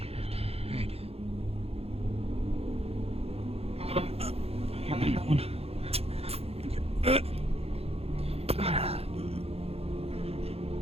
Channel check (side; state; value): left; late; 0.29 ms